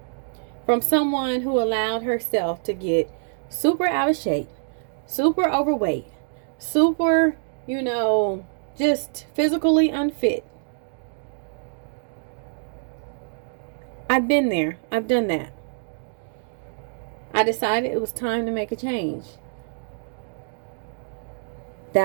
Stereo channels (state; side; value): silent; left; digital silence